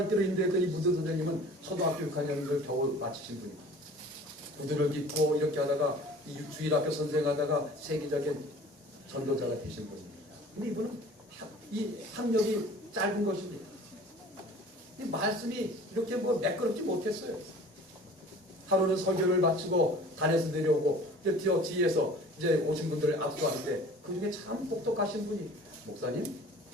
인도했던 이 무디 선생님은 초등학교 6학년을 겨우 마치신 분입니다. 구두를 깃고 이렇게 하다가 이 주일학교 선생하다가 세계적인 전도자가 되신 분입니다. 근데 이분은 이 학력이 짧은 것입니다. 이 말씀이 이렇게 매끄럽지 못했어요. 하루는 설교를 마치고 단에서 내려오고 뒤에서 이제 오신 분들을 압수하는데 그 중에 참 똑똑하신 분이 목사님,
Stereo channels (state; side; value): normal; both; correlation 0.46